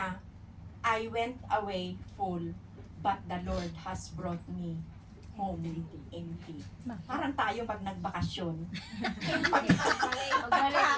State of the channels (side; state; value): both; identical; correlation 1.00